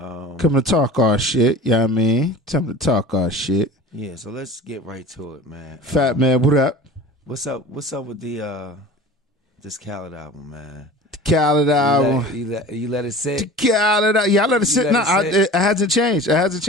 to talk our shit. You know what I mean? Time to talk our shit. Yeah, so let's get right to it, man. Fat man, what up? What's up with the this Khaled album, man? The Khaled album. You let it sit? The Khaled. Yeah, I let it sit. No, it hasn't changed. It hasn't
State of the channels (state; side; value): normal; both; correlation 0.39